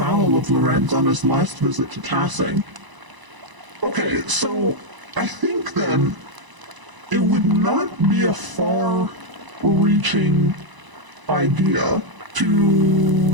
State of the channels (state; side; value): late; left; 1.0 ms